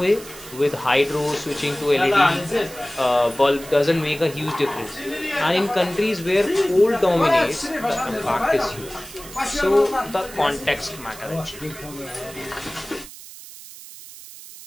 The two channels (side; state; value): right; noise; hiss, 16 dB below the sound